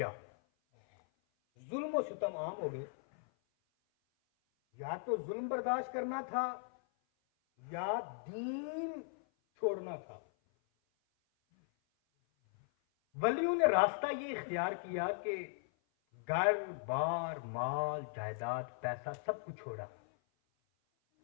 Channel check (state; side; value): silent; right; 52 dB below the other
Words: जुल्म और सितम आम हो गए। या तो जुल्म बर्दाश्त करना था या दीन छोड़ना था। वलियों ने रास्ता ये इख्तियार किया कि घर बार माल जायदाद पैसा सब कुछ छोड़ा,